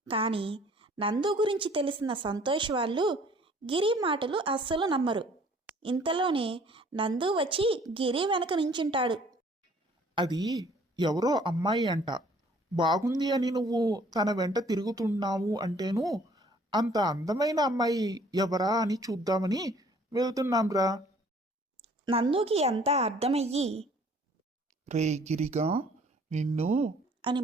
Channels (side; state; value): both; normal; correlation 0.56